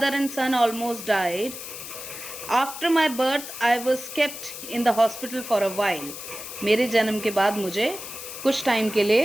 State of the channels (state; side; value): noise; left; hiss, 10 dB below the sound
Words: and son almost died. After my birth I was kept in the hospital for a while. मेरे जन्म के बाद मुझे कुछ टाइम के